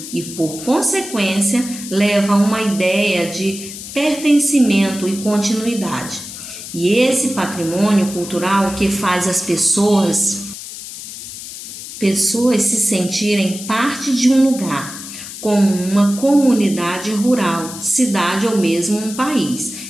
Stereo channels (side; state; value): left; noise; hiss, 11 dB below the sound